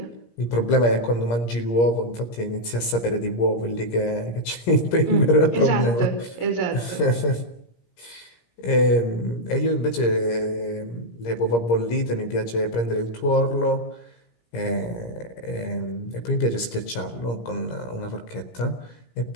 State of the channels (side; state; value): right; late; 17 ms